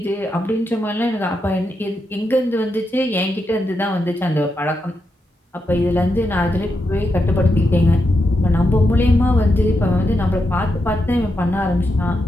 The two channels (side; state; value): both; normal; correlation 0.85